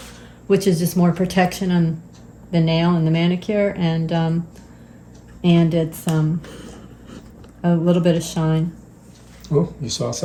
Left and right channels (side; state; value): both; identical; correlation 1.00